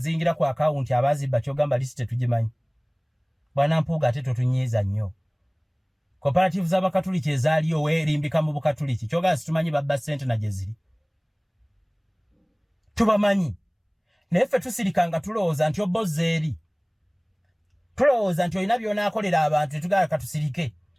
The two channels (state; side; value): identical; both; correlation 1.00